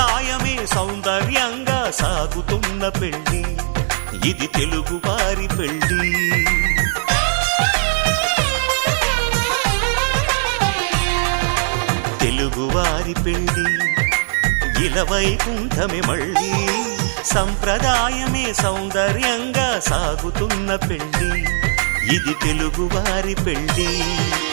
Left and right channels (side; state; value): left; silent; digital silence